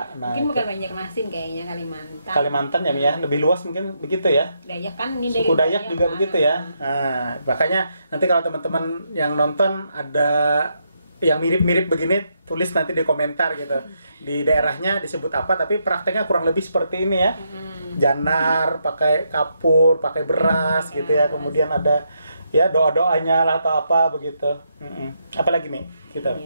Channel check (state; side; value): inverted; both; correlation -0.79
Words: Nah, mungkin bukan Banjarmasin, kayaknya Kalimantan. Kalimantan ya Mia, lebih luas mungkin begitu ya. Dayak kan ini suku Dayak juga begitu ya. Nah, makanya nanti kalau teman-teman yang nonton ada yang mirip-mirip begini, tulis nanti di komentar gitu. Di daerahnya disebut apa, tapi prakteknya kurang lebih seperti ini ya. Janar, pakai kapur, pakai beras gitu ya. Kemudian ada ya doa-doanya lah atau apa begitu. Apalagi nih kita.